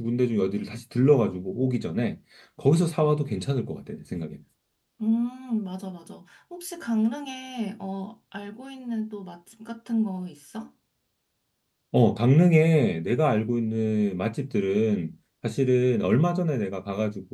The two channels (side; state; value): both; identical; correlation 1.00